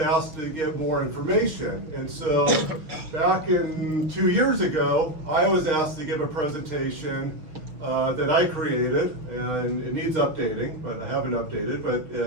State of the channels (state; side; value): late; left; 6.3 ms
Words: asked to get more information. And so back in 2 years ago, I was asked to give a presentation that I created, and it needs updating, but I haven't updated, but